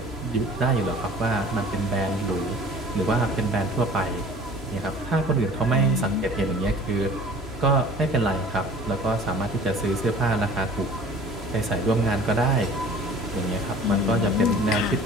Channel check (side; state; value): both; normal; correlation 0.47